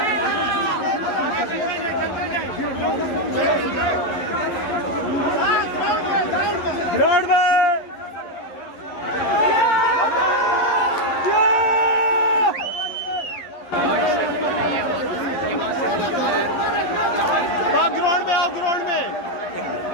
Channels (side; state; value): right; late; 11 ms